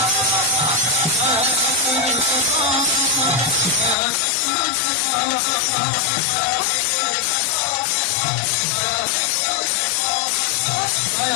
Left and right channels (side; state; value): right; drops out; at 4.0 s